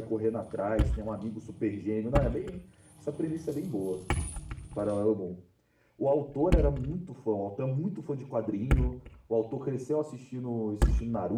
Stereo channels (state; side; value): identical; both; correlation 1.00